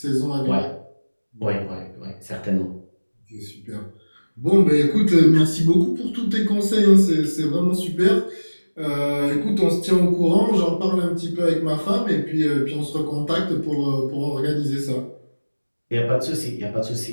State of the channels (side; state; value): both; inverted; correlation -1.00